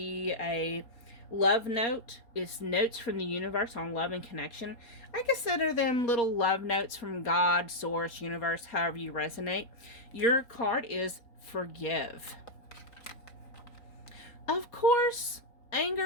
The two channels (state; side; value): late; right; 4.2 ms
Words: a love note. It's notes from the universe on love and connection. I consider them little love notes from God, source, universe, however you resonate. Your card is forgive. Of course,